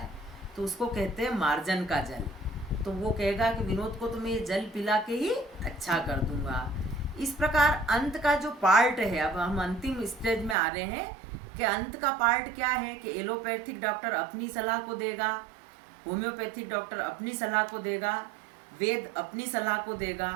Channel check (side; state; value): left; drops out; at 10.6 s